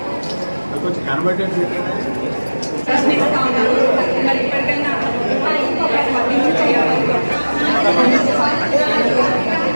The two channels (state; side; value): inverted; both; correlation -1.00